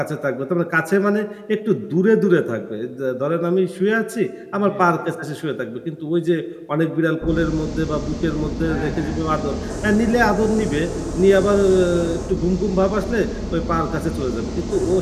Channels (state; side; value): identical; both; correlation 1.00